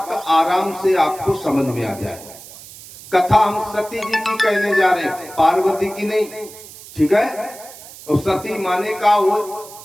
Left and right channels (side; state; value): right; noise; hiss, 17 dB below the sound